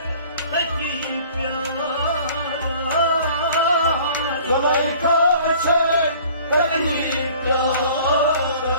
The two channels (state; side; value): inverted; both; correlation -0.50